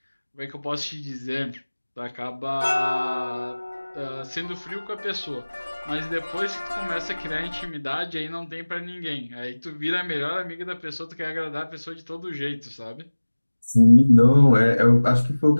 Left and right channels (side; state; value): both; inverted; correlation -1.00